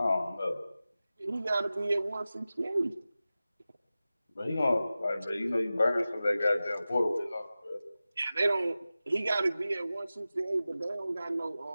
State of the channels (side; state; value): both; inverted; correlation -0.95